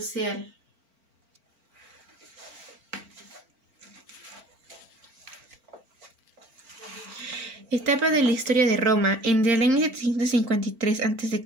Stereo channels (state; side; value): late; left; 4.4 ms